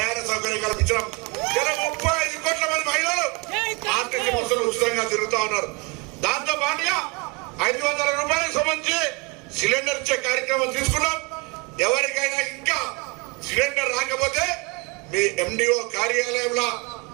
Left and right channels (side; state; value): left; quieter; 29.3 dB